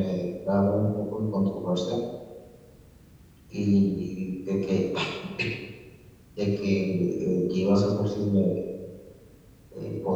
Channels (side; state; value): both; identical; correlation 1.00